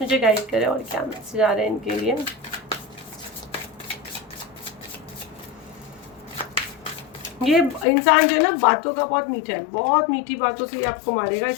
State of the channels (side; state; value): right; drops out; at 7.9 s